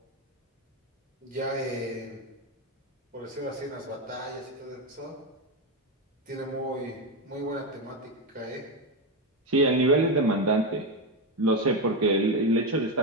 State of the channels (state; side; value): normal; both; correlation 0.10